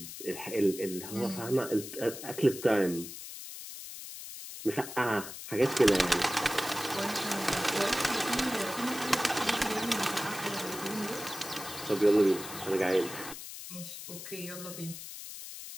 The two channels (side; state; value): left; noise; hiss, 11 dB below the sound